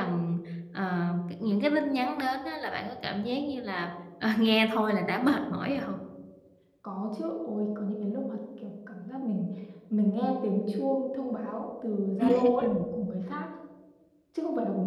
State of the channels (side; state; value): both; identical; correlation 1.00